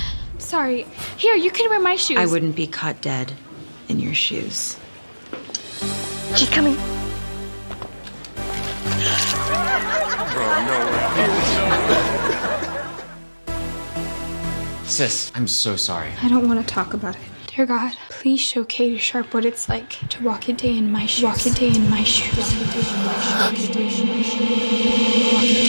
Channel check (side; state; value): both; inverted; correlation -1.00